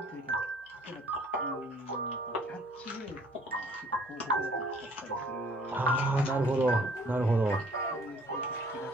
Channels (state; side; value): normal; both; correlation 0.57